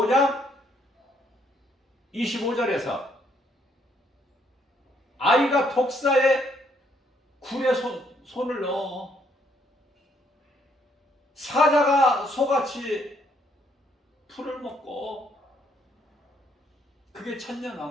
25절에서 아이가 독사의 굴에 손을 넣어 사자가 소같이 풀을 먹고, 그게 천년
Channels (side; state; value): both; normal; correlation 0.70